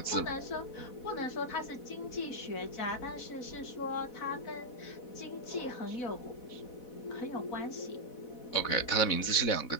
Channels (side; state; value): right; late; 4.1 ms